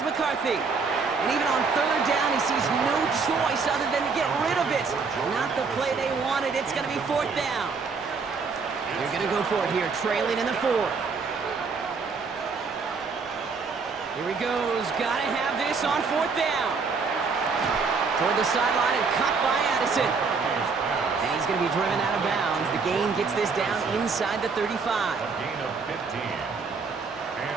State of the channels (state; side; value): quieter; left; 4.9 dB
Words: McCarthy. And even on 3rd down, he sees no choice other than to get rid of it. Not the play they wanted. It's going to be 4th down. They're going to go for it here, trailing in the 4th. Here he goes. Got to have this on 4th down. Toward the sideline and cut by Addison. And he's going to be driven out of bounds. The gain gets this down inside the 35. A gain of 15.